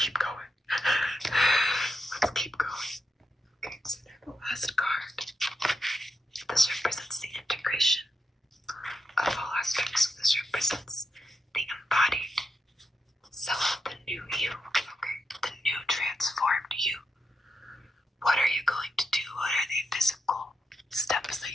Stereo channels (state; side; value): normal; both; correlation 0.85